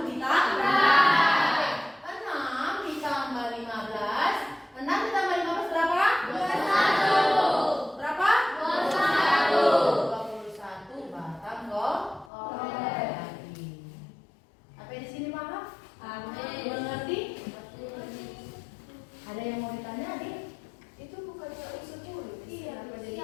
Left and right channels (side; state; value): right; drops out; at 12.3 s